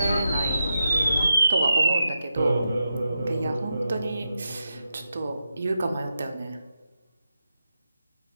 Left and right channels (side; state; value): both; inverted; correlation -0.88